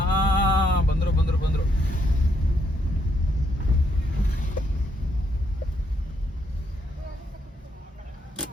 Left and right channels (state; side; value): normal; both; correlation 0.75